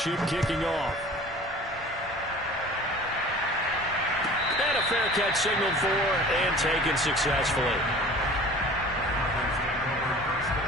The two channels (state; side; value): normal; both; correlation 0.43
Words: kicking off. And a fair catch signaled for and taken successfully.